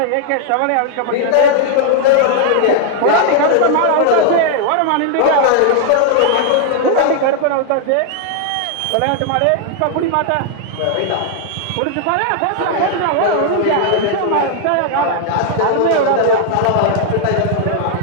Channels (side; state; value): both; different; correlation 0.00